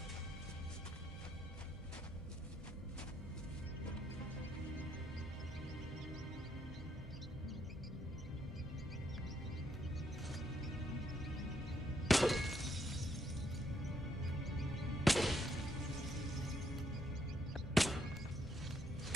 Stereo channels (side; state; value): both; normal; correlation 0.73